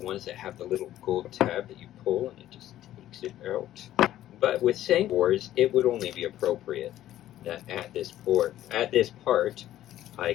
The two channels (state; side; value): quieter; right; 13.1 dB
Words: that have the little gold tab that you pull and it just takes it out. But with Sangrevores, it would only be appropriate that at this part, I